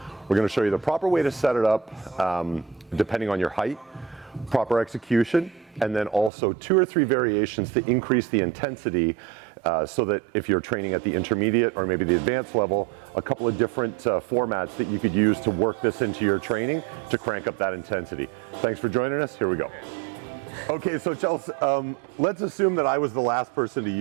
We're gonna show you the proper way to set it up, depending on your height, proper execution, and then also 2 or 3 variations to increase the intensity so that if you're training at the intermediate or maybe the advanced level, a couple of different formats that you could use to work this into your training to crank up that intensity. Thanks for joining us. Here we go. Okay, so Chelsea, let's assume that I was the last person to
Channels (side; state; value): left; drops out; at 6.3 s